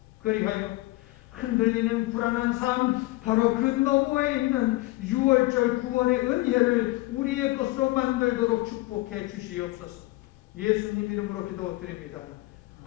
그리하여 흔들리는 불안한 삶, 바로 그 너머에 있는 6월절 구원의 은혜를 우리의 것으로 만들도록 축복해 주시옵소서. 예수님 이름으로 기도드립니다.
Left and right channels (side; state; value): right; quieter; 20.7 dB